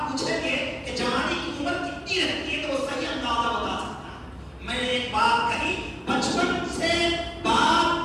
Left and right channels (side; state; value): both; identical; correlation 1.00